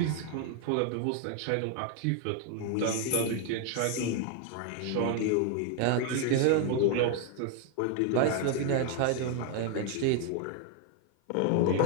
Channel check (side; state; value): both; different; correlation 0.01